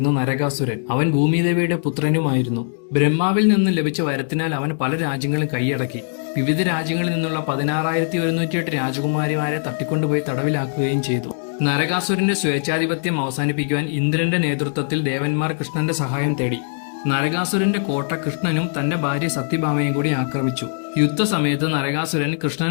നരകാസുരൻ. അവൻ ഭൂമിദേവിയുടെ പുത്രനുമായിരുന്നു. ബ്രഹ്മാവിൽ നിന്നും ലഭിച്ച വരത്തിനാൽ അവൻ പല രാജ്യങ്ങളും കൈയടക്കി. വിവിധ രാജ്യങ്ങളിൽ നിന്നുള്ള 16,108 രാജകുമാരിമാരെ തട്ടിക്കൊണ്ടുപോയി തടവിലാക്കുകയും ചെയ്തു. നരകാസുരന്റെ സ്വേച്ഛാധിപത്യം അവസാനിപ്പിക്കുവാൻ ഇന്ദ്രന്റെ നേതൃത്വത്തിൽ ദേവന്മാർ കൃഷ്ണന്റെ സഹായം തേടി. നരകാസുരന്റെ കോട്ട കൃഷ്ണനും തന്റെ ഭാര്യ സത്യഭാമയും കൂടി ആക്രമിച്ചു. യുദ്ധസമയത്ത് നരകാസുരൻ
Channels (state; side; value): silent; right; 65 dB below the other